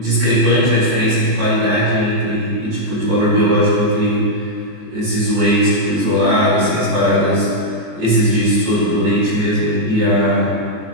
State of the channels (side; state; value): left; late; 24 ms